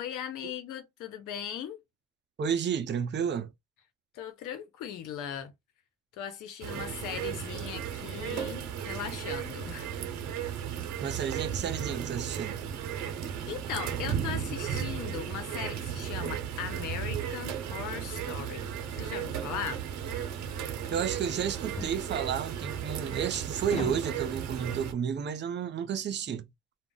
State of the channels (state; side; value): quieter; left; 4.9 dB